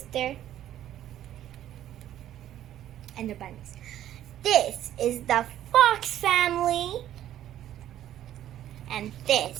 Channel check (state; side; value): quieter; left; 11.9 dB